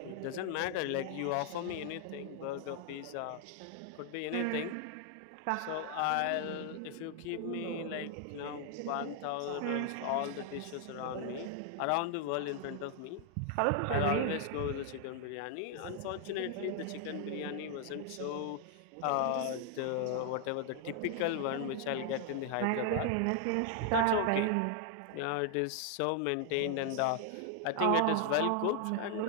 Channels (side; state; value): both; different; correlation 0.00